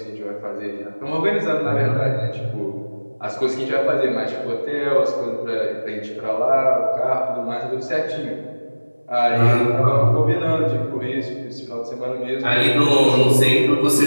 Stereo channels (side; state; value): both; inverted; correlation -1.00